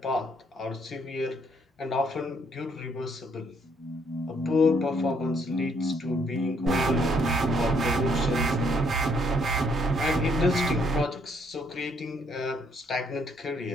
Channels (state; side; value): normal; both; correlation 0.69